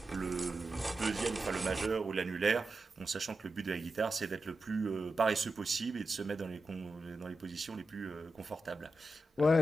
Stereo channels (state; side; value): normal; both; correlation 0.90